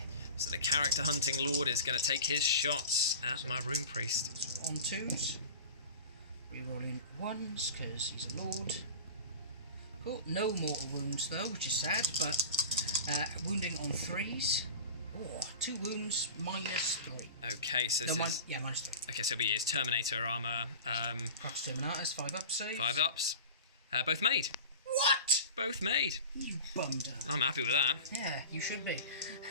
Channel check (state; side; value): inverted; both; correlation -0.34